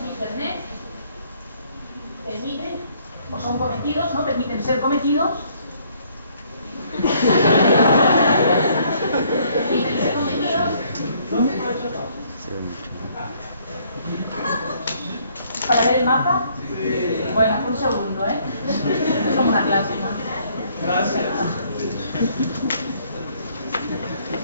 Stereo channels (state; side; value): inverted; both; correlation -0.65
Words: Internet permiten, o son cometidos, ¿no? Permiten ser cometidos. Permiten ser cometidos. ¿Para ver el mapa? Sí. Bueno, un segundo, ¿eh? Es como una clase, ¿no? Gracias.